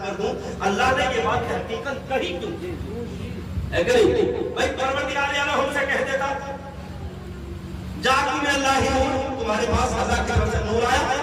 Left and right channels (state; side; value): identical; both; correlation 1.00